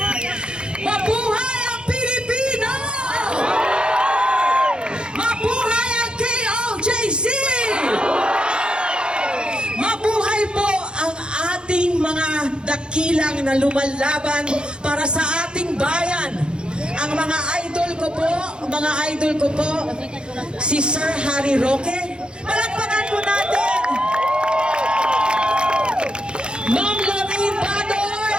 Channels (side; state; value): left; late; 0.051 ms